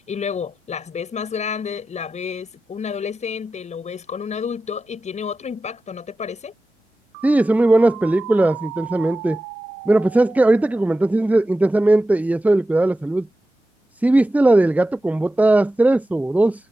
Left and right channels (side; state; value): both; normal; correlation 0.94